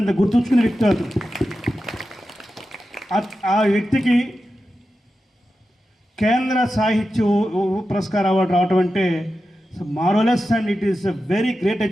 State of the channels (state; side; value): normal; both; correlation 0.91